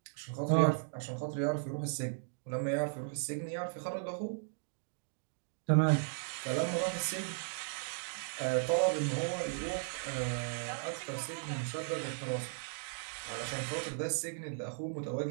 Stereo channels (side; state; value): left; silent; digital silence